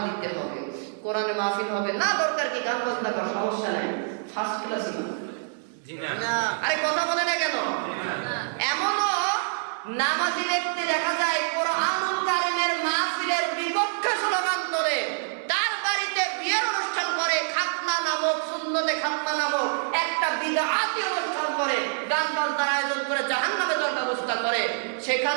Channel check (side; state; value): left; silent; digital silence